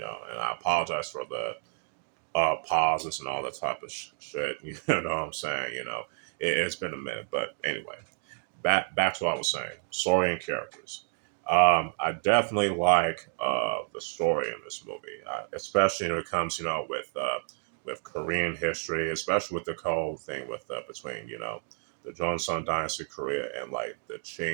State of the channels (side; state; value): left; silent; 56 dB below the other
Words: I apologize for the pauses and all that type of shit. You know what I'm saying? It's been a minute, but anyway, back to what I was saying. Story and characters. I definitely like the story in this movie, especially when it comes, with Korean history, especially with the whole thing with between the Joseon dynasty Korea and like the